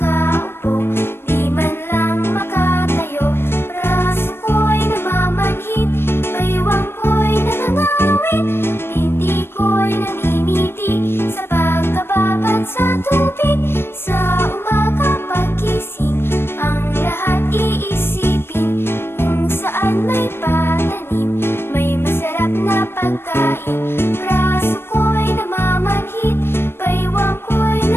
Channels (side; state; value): right; late; 0.11 ms